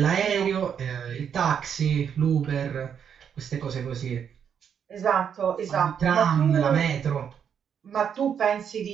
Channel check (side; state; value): left; quieter; 7.9 dB